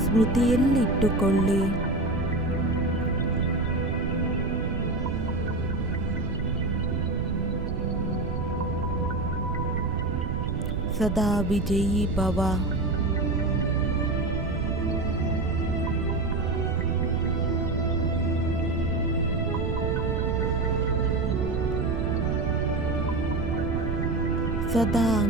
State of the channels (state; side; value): noise; right; rumble, 2 dB below the sound